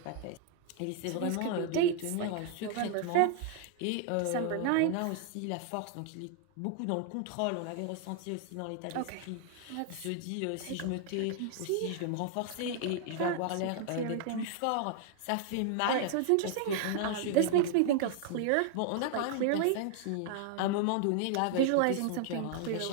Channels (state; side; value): different; both; correlation 0.00